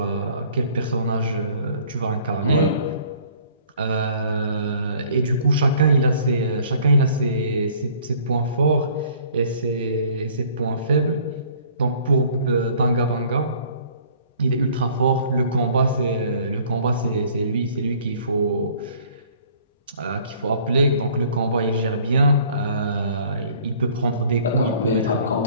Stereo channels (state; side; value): inverted; both; correlation -0.55